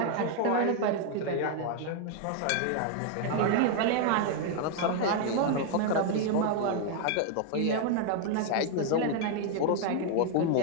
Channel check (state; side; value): different; both; correlation 0.00